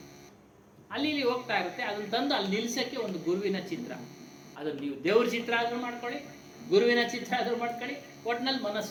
ಅಲ್ಲಿ ಇಲ್ಲಿ ಹೋಗ್ತಾ ಇರುತ್ತೆ, ಅದನ್ನ ತಂದು ಅಲ್ಲಿ ನಿಲ್ಸಕ್ಕೆ ಒಂದು ಗುರುವಿನ ಚಿತ್ರ. ಅದನ್ನು ನೀವು ದೇವ್ರ ಚಿತ್ರ ಆದ್ರೂ ಮಾಡ್ಕೊಳ್ಳಿ, ಗುರುವಿನ ಚಿತ್ರ ಆದ್ರೂ ಮಾಡ್ಕೊಳ್ಳಿ, ಒಟ್ನಲ್ಲಿ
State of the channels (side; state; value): both; identical; correlation 1.00